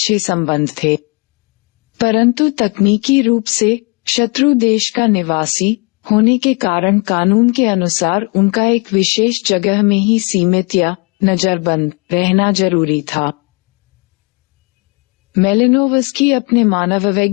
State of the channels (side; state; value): right; quieter; 30.4 dB